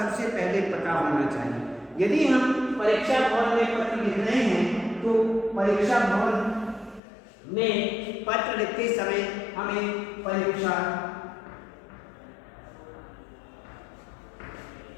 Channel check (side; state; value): right; drops out; at 7.0 s